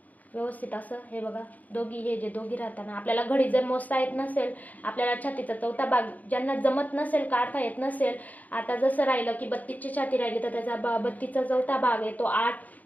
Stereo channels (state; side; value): late; right; 0.078 ms